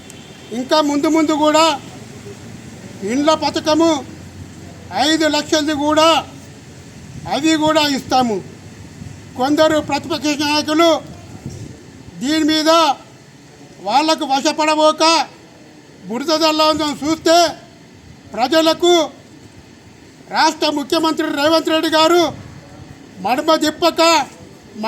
ఇంకా ముందు ముందు కూడా ఇండ్ల పథకము 5 లక్షలది కూడా అవి కూడా ఇస్తాము. కొందరు ప్రతిపక్ష నాయకులు దీని మీద వాళ్లకు వశపడబోక బురదల్లా చూస్తే ప్రజలకు రాష్ట్ర ముఖ్యమంత్రి రేవంత్ రెడ్డి గారు మడమ తిప్పక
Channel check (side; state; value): both; identical; correlation 1.00